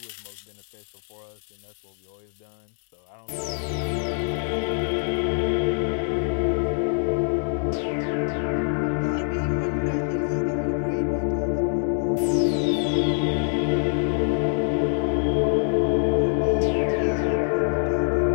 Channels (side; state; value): right; silent; digital silence